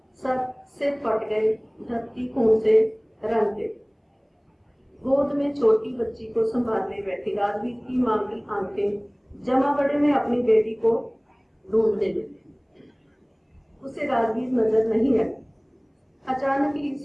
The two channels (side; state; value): both; identical; correlation 1.00